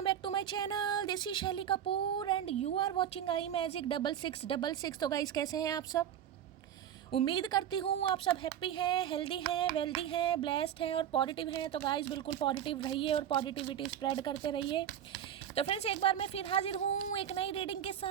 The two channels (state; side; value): quieter; left; 10.0 dB